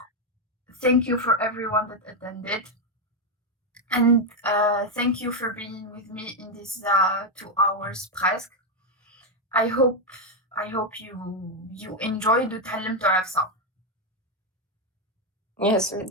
thank you for everyone that attended. And thank you for being with me in these 2 hours presque. I hope you enjoyed وتعلمتوا على ça. Yes, we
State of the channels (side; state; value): both; normal; correlation 0.03